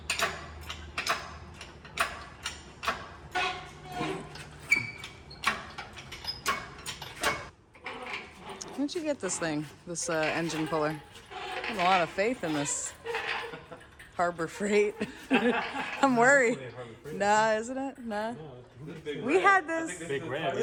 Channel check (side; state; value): both; identical; correlation 1.00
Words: Where'd you get this thing? This engine puller? I have a lot of faith in this Harbor Freight. I'm worried. Nah, isn't it? Nah. We had this. Big red.